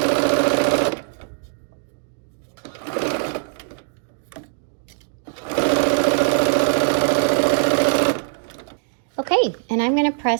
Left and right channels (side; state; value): left; silent; digital silence